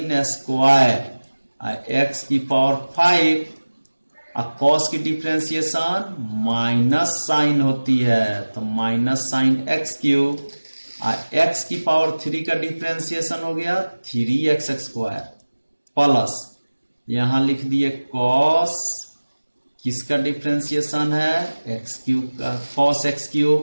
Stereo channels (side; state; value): both; inverted; correlation -1.00